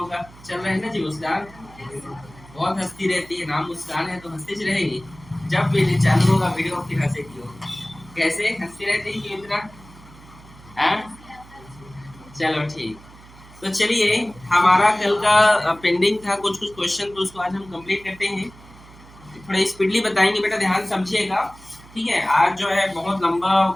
का चल रहा है ना जी? मुस्कान बहुत हंसती रहती है, नाम मुस्कान है तो हंसती रहेगी। जब भी चालू होगा वीडियो फिर हंसेगी हो। कैसे हंसती रहती है क्यों इतना? चलो ठीक। तो चलिए, हमारा कल का पेंडिंग था कुछ क्वेश्चन, तो उसको आज हम कंप्लीट करते हैं। थोड़ा स्पीडली बताएंगे बेटा, ध्यान समझिएगा। ठीक है, आज जो है बहुत लंबा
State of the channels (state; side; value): noise; right; hum, 22 dB below the sound